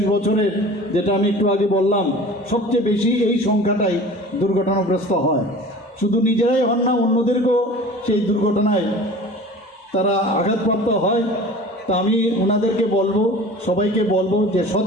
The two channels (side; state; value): both; normal; correlation 0.41